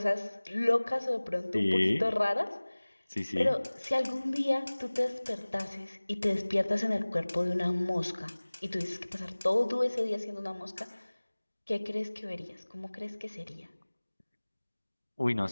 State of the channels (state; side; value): inverted; both; correlation -1.00